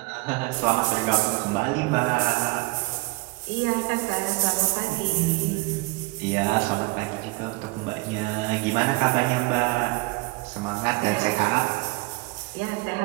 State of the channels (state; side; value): quieter; left; 23.6 dB